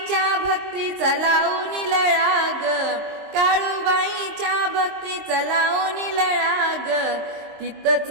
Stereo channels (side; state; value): left; late; 22 ms